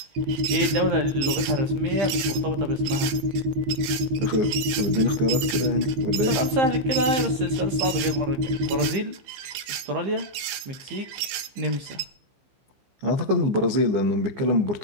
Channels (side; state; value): left; late; 16 ms